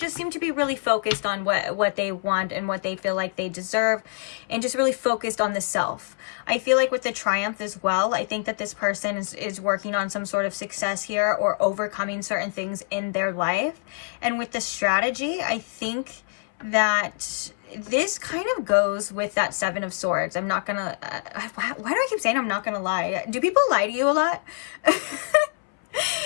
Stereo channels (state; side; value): silent; right; 61 dB below the other